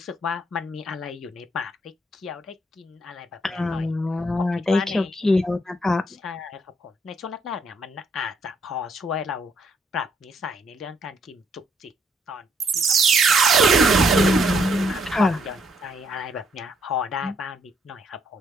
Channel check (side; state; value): both; normal; correlation 0.71